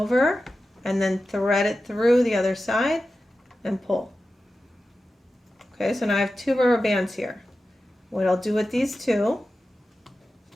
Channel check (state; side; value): normal; both; correlation 0.93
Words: and then thread it through the other side and pull. Okay, so now I have two rubber bands here. What I'll do with these two